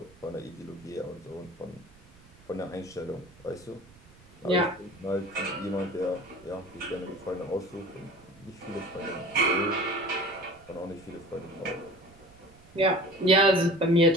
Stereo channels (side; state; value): right; noise; rumble, 25 dB below the sound